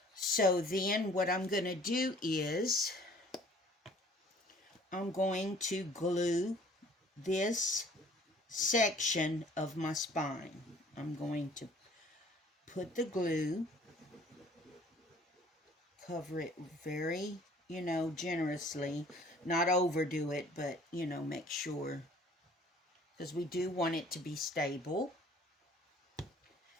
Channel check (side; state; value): both; normal; correlation 0.54